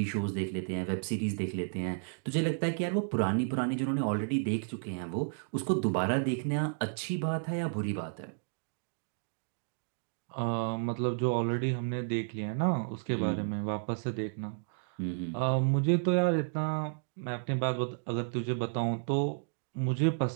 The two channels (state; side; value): silent; left; digital silence